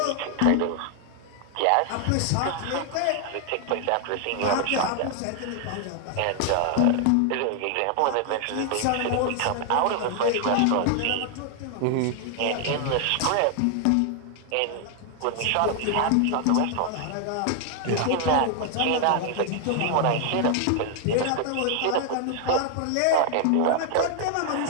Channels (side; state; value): both; different; correlation 0.00